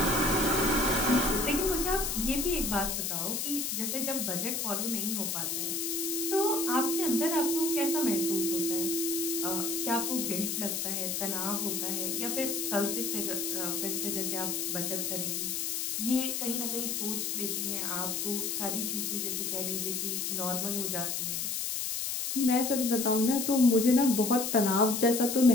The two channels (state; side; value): noise; left; hiss, 1 dB below the sound